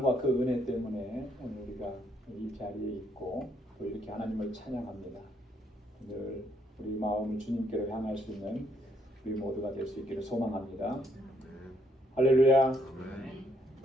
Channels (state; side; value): normal; both; correlation 0.71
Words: 그 은혜 때문에 오늘 우리가 이 자리에 있고 또 이렇게 하나님을 찬양합니다. 늘 우리 마음을 주님께로 향할 수 있는 우리 모두가 될 수 있기를 소망합니다. 할렐루야.